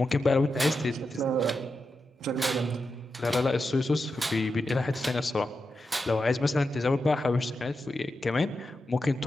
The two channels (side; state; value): both; normal; correlation 0.88